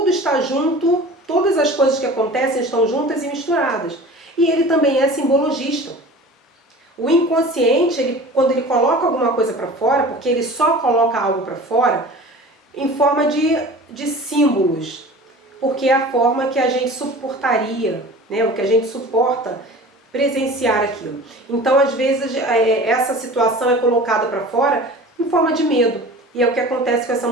está junto, todas as coisas que acontecem estão juntas e misturadas. E ele também é simbologista. O inconsciente, quando ele coloca alguma coisa para fora, porque ele só coloca algo para fora, em forma de símbolos, porque é a forma que a gente suportaria, né, o que a gente suporta presenciar aquilo. Então, às vezes, essa situação é colocada para fora em forma de medo. E é o que acontece com essa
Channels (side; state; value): both; normal; correlation 0.40